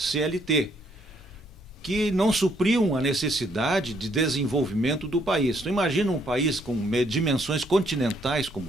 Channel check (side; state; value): both; normal; correlation 0.69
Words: que não supriam a necessidade de desenvolvimento do país. Então, imagina um país com dimensões continentais